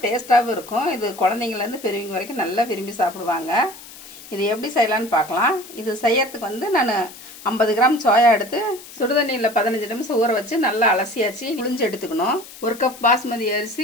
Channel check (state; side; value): noise; left; hiss, 17 dB below the sound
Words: டேஸ்டாகவும் இருக்கும். இது குழந்தைங்கலேருந்து பெரியவங்க வரைக்கும் நல்லா விரும்பி சாப்பிடுவாங்க. இது எப்படி செய்யலான்னு பார்க்கலாம். இது செய்யறதுக்கு நான் 50 கிராம் சோயா எடுத்து சுடுதண்ணியில் 15 நிமிஷம் ஊற வச்சு நல்லா அலசியாச்சு புளிஞ்சு எடுத்துக்கணும். 1 கப் பாஸ்மதி